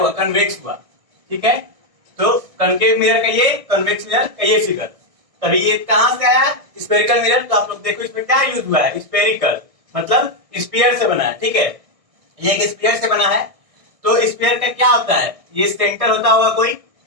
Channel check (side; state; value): left; late; 1.6 ms